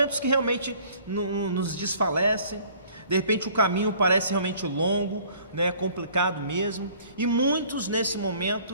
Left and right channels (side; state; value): both; inverted; correlation -0.55